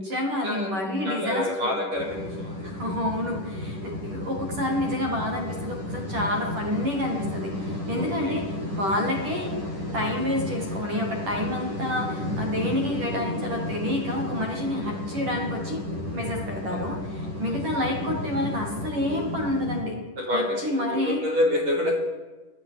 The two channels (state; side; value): late; left; 10 ms